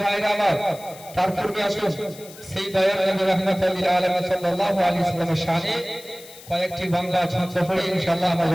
ভাইরা আমার, তার পূর্বে আসুন সেই দয়াল নবী রাহমাতুল লিল আলামিন সাল্লাল্লাহু আলাইহি ওয়াসাল্লামের শানে কয়েকটি বাংলা ছন্দ পড়ে ইনশাআল্লাহ আমরা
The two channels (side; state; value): left; noise; hiss, 19 dB below the sound